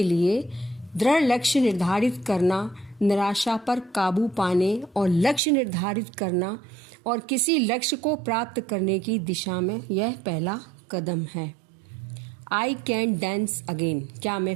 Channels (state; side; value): drops out; left; at 5.4 s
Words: लिए दृढ़ लक्ष्य निर्धारित करना, निराशा पर काबू पाने और लक्ष्य निर्धारित करना और किसी लक्ष्य को प्राप्त करने की दिशा में यह पहला कदम है. I can dance again. क्या मैं